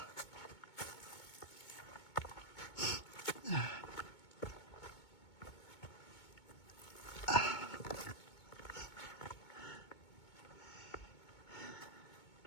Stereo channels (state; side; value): late; right; 2.2 ms